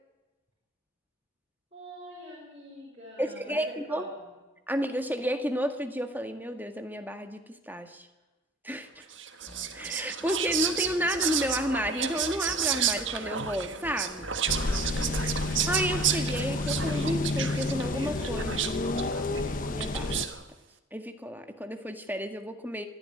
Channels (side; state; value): both; normal; correlation 0.50